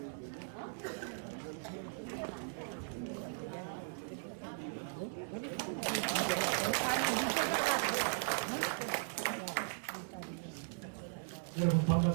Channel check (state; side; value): silent; left; digital silence